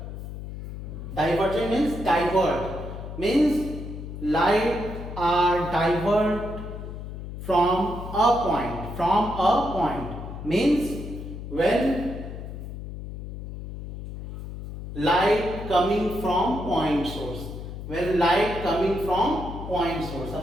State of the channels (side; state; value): left; noise; hum, 9 dB below the sound